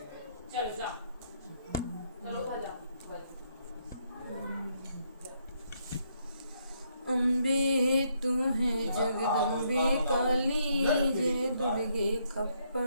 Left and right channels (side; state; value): both; inverted; correlation -0.74